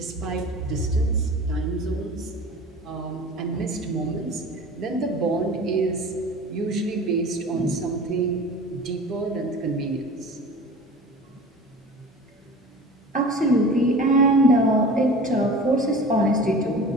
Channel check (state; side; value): normal; both; correlation 0.38